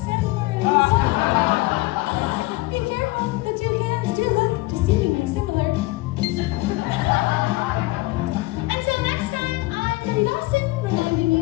sandworms. Be careful, the 2 cans do look deceivingly similar. Until next time, I'm Dawson, reminding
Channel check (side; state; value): right; quieter; 20.8 dB